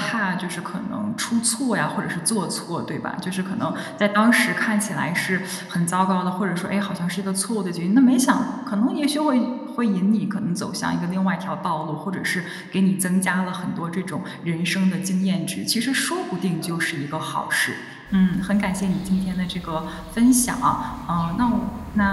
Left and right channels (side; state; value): both; identical; correlation 1.00